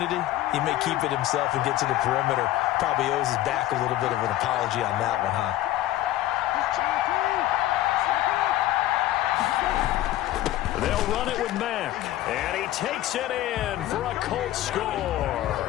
he may keep it himself and get to the perimeter. Probably owes his back a little bit of an apology on that one, huh? They'll run it with Mack. And he takes it in for a Colts score.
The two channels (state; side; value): quieter; right; 14.6 dB